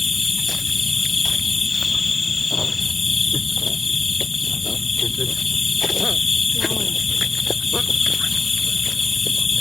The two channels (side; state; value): right; quieter; 3.6 dB